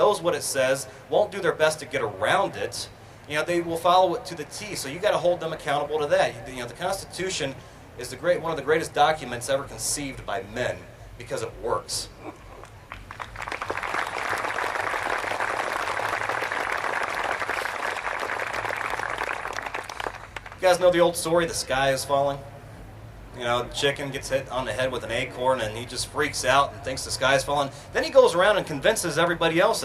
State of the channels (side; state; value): both; identical; correlation 1.00